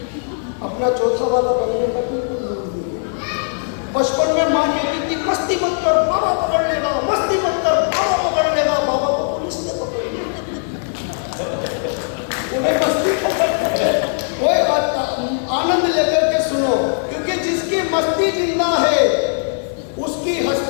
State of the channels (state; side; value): silent; right; 65 dB below the other